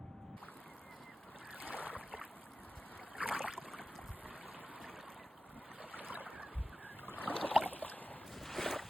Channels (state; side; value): normal; both; correlation 0.94